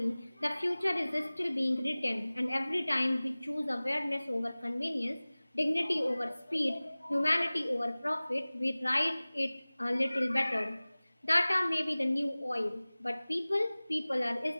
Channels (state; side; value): inverted; both; correlation -0.99